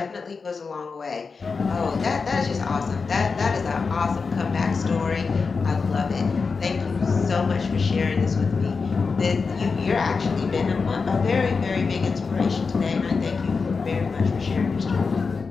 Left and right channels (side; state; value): right; quieter; 4.8 dB